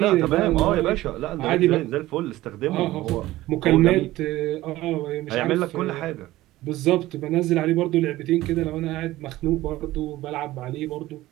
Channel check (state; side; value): quieter; left; 16.6 dB